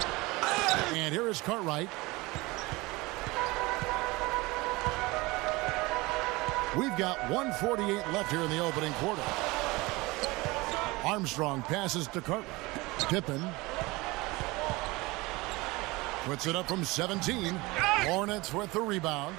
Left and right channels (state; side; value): quieter; left; 22.6 dB